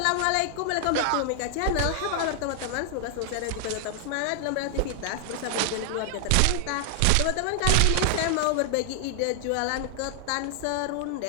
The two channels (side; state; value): both; different; correlation 0.00